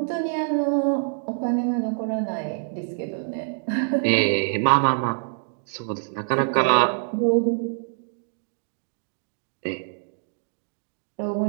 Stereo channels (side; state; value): left; silent; digital silence